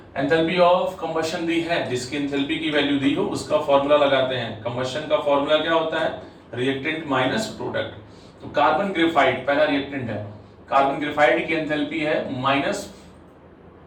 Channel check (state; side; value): identical; both; correlation 1.00